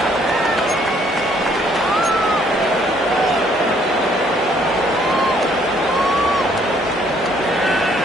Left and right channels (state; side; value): noise; right; hum, 24 dB below the sound